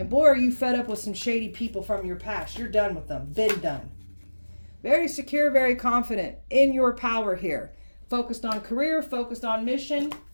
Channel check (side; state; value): both; inverted; correlation -1.00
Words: boy, are you fed up with some shady people from your past. You're done with them. Been done. Very secure, very confident in your power here. Focused on career, focused on mission.